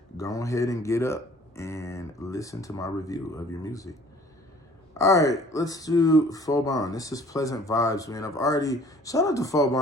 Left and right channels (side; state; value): both; normal; correlation 0.53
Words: Go ahead and get up and listen to my review of your music. All right, let's do Phobon. This is Pleasant Vibes, man. I've already, shout out to